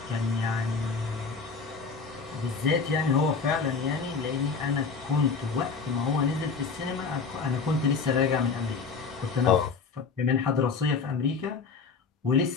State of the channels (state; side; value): quieter; right; 5.0 dB